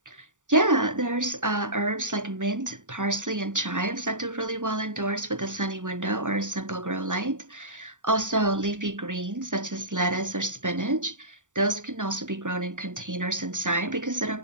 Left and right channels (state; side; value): late; left; 0.86 ms